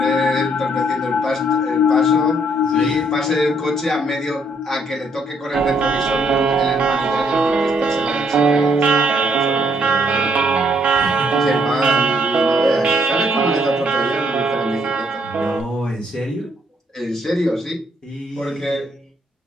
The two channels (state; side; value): normal; both; correlation 0.70